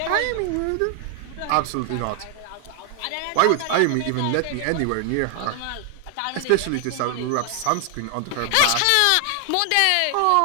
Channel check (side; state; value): both; different; correlation 0.00